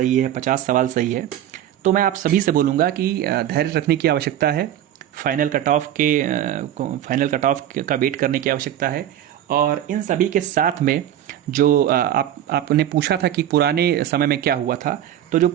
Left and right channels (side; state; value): left; quieter; 11.3 dB